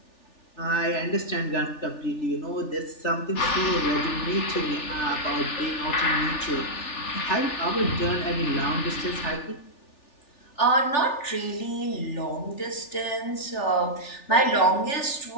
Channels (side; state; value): right; late; 3.4 ms